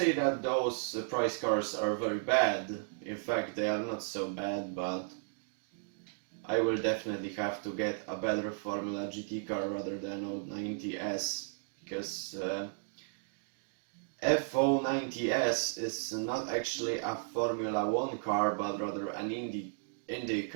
that those price cars are very bad, in fact they are not so bad, but I will definitely have to get a better Formula GT car rather than 090S, because F090S is not actually a Formula 1 car, but rather an Indy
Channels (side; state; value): left; silent; digital silence